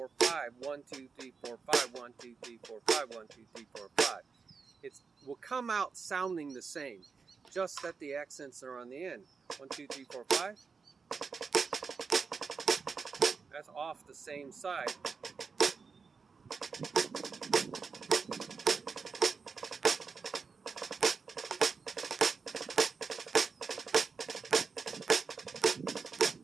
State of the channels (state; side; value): quieter; left; 5.2 dB